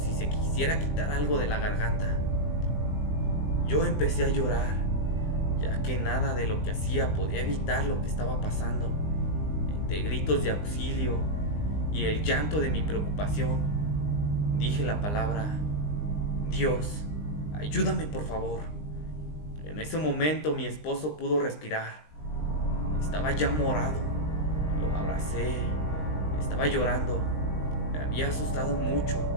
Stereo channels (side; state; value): right; late; 20 ms